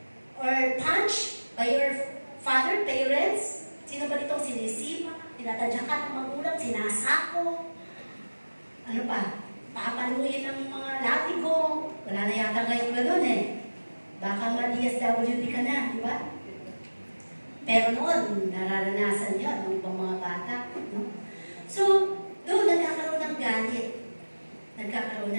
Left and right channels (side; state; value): both; inverted; correlation -1.00